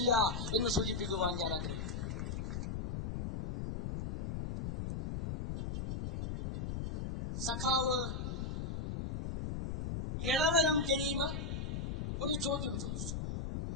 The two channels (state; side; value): noise; left; rumble, 3 dB below the sound